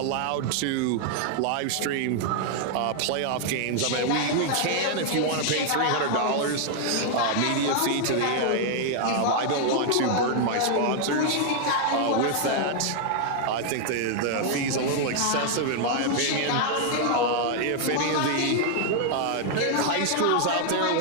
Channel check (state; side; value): different; both; correlation 0.00